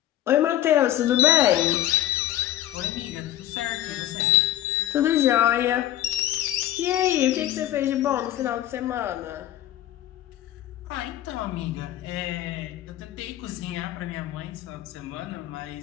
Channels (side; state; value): right; quieter; 13.0 dB